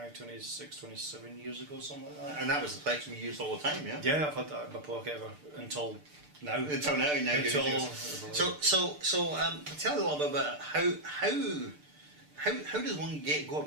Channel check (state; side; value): late; left; 6.7 ms